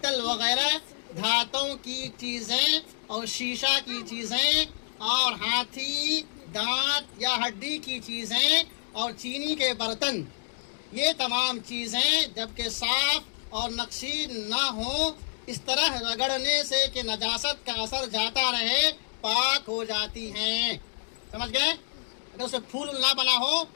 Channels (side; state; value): right; silent; digital silence